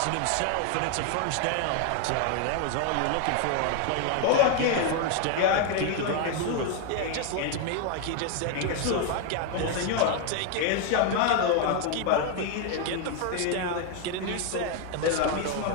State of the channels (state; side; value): different; both; correlation 0.01